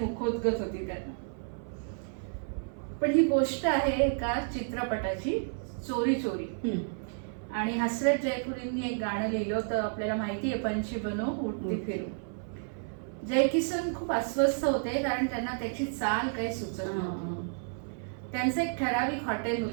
मुखोद्गत होती त्यांना. पण ही गोष्ट आहे एका चित्रपटाची, चोरी चोरी. आणि हसरत जयपुरींनी एक गाणं लिहिलं होतं, आपल्याला माहिती आहे, पंछी बनो उडती फिरू. जय किसन खूप अस्वस्थ होते कारण त्यांना त्याची चाल काही सुचत नव्हती. त्यांचं एक ठराविक हॉटेल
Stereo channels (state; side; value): silent; left; 57 dB below the other